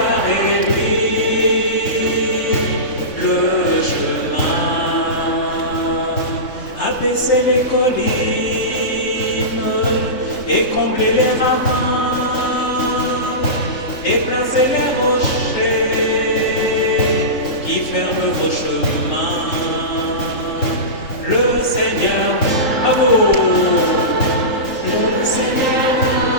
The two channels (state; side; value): late; right; 3.6 ms